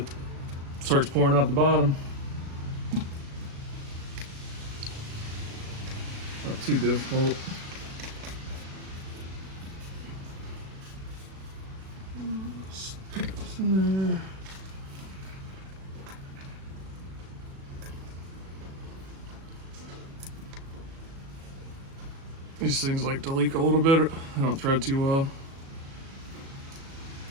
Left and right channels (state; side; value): late; left; 36 ms